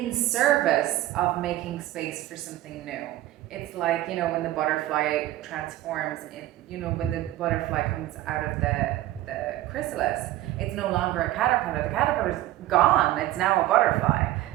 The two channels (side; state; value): left; quieter; 15.1 dB